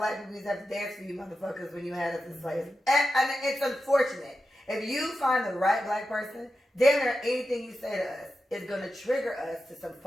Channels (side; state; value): both; normal; correlation 0.91